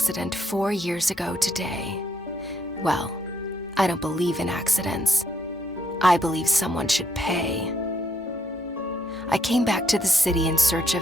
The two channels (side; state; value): both; normal; correlation 0.73